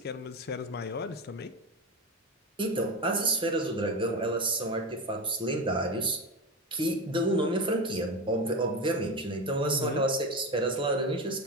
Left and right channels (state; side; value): normal; both; correlation 0.20